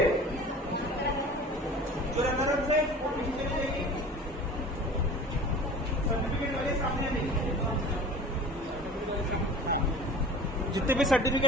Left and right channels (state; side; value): normal; both; correlation 0.40